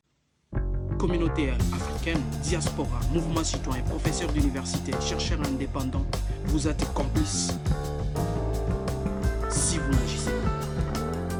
communauté africaine, diaspora, mouvement citoyen, professeurs d'université, chercheurs indépendants, vous êtes complices si vous n'agissez pas.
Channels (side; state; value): both; identical; correlation 1.00